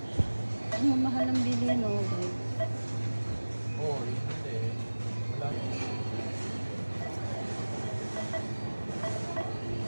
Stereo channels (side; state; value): both; inverted; correlation -1.00